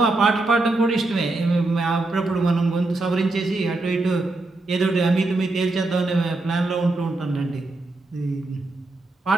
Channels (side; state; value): left; quieter; 3.0 dB